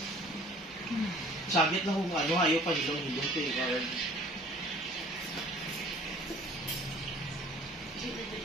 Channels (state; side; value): normal; both; correlation 0.52